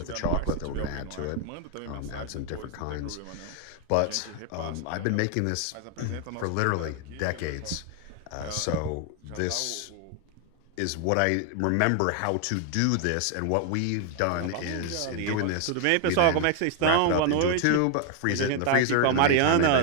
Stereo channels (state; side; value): different; both; correlation 0.00